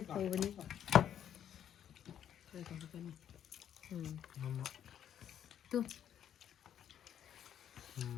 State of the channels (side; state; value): right; quieter; 9.8 dB